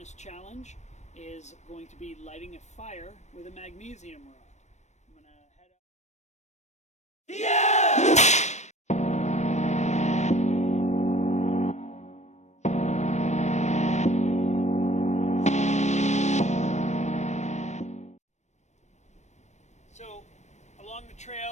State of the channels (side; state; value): right; late; 0.34 ms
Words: Challenge is going to be lighting a fire with a magnesium rod. I'm gonna head out. So along the